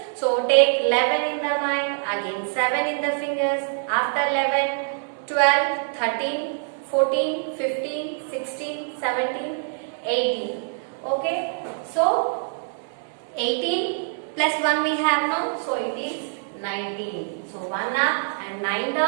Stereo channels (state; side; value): silent; left; digital silence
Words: So take 11 in the mind, again 7 in the fingers. After 11, 12, 13, 14, 15, 16, 17, 18. Okay. So 18 plus 1 we have now. So it is 19. So 1 up and 9